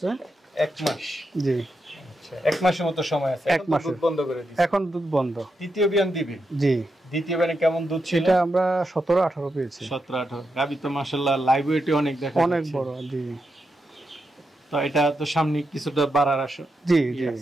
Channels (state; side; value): normal; both; correlation 0.85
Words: 1 মাস। জি। 1 মাসের মতো সময় আছে। 1 মাস দুধ বন্ধ করে দিয়েছে। এখন দুধ বন্ধ। তৃতীয় বিয়ান দিবে? জি। দ্বিতীয় বিয়ানে কেমন দুধ ছিল? এটা আমরা 17-18 পেয়েছি। 17-18। গাবি তো মাশাআল্লাহ লাইভ ওয়েটে অনেক দেখা যাচ্ছে। অনেক বড়। জি। তো এটা তো সামনে কিছুটা বাড়ার আশা। জি জি।